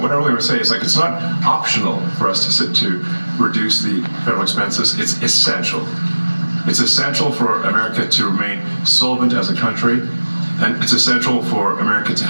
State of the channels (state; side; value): inverted; both; correlation -1.00